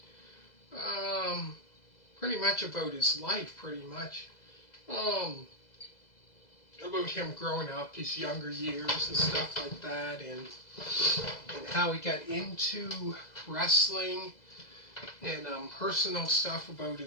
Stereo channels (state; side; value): late; right; 2.0 ms